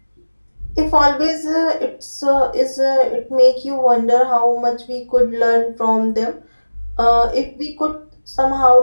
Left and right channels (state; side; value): inverted; both; correlation -1.00